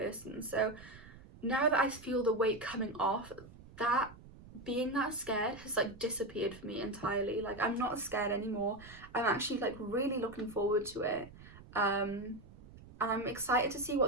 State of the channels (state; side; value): noise; right; rumble, 19 dB below the sound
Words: So now that I feel the weight coming off, that being that scared has like disappeared for me entirely. Like I'm not scared anymore. I'm actually like really looking forward to it. And I'm excited to see